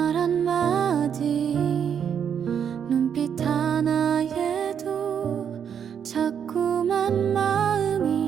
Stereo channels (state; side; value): quieter; left; 8.0 dB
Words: 한마디 눈빛 하나에도 자꾸만